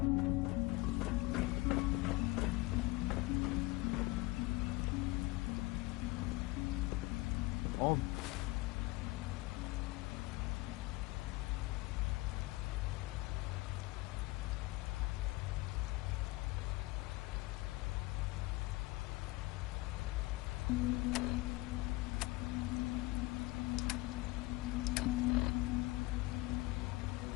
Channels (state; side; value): quieter; right; 21.3 dB